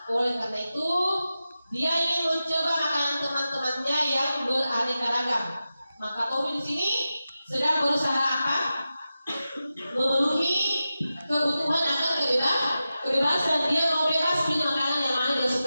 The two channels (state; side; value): inverted; both; correlation -0.92